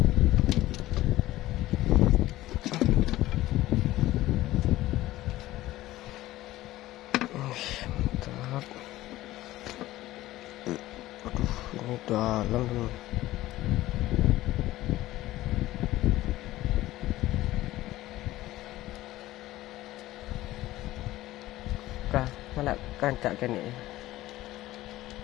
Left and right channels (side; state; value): right; quieter; 16.2 dB